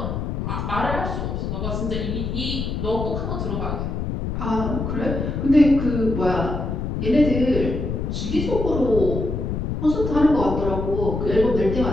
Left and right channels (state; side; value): noise; left; rumble, 3 dB below the sound